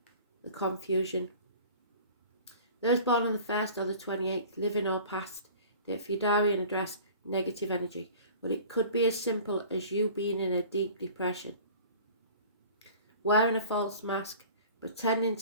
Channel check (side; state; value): both; inverted; correlation -0.44